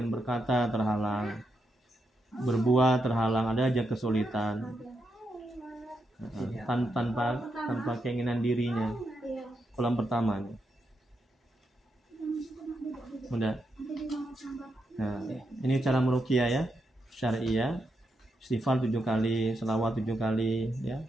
berkata terhalang, berbuat terhalang, ada aja kesulitan. Tanpa keinginan dirinya. Iya. Kolom pertama. Udah. Nah, ini cara meruqyah ya, syariah. Istighfar 7 kali, selawat 7 kali ya.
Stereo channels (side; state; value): both; normal; correlation 0.83